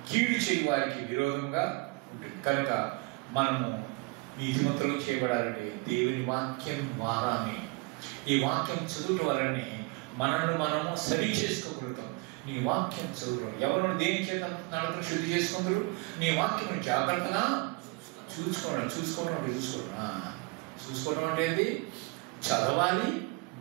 కీడు చేయి వారికి విరోధంగా ఉంటుంది. కనుక మనము నీతిమంతులు చేయబడాలంటే దేవుని వాక్యం ద్వారానే, ఈ వాక్యం చదువుట వలనే మనల్ని మనము సరి చేసుకోగలుగుతాం. నీ వాక్యం చదువు. ఎవరు దేని చేత నడకను శుద్ధి చేసుకుందరు? నీ వాక్యం జాగ్రత్తగా చూసుకోవడం అంటే ఏంటి? చదవాలి,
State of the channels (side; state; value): left; quieter; 27.3 dB